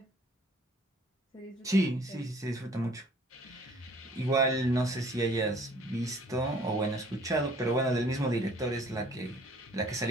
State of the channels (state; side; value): normal; both; correlation 0.55